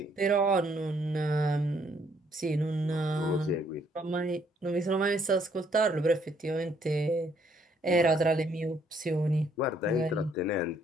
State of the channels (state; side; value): normal; both; correlation 0.68